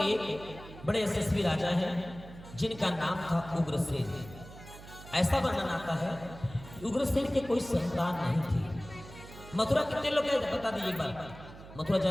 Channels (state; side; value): noise; right; hum, 16 dB below the sound